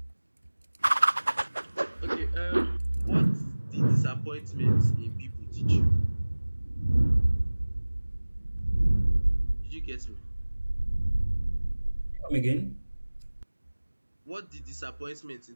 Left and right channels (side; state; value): both; inverted; correlation -1.00